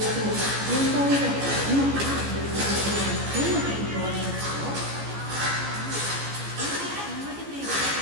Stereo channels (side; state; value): left; late; 14 ms